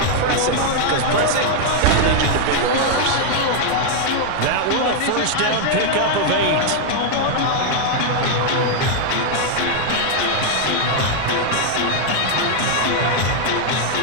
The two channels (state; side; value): different; both; correlation 0.00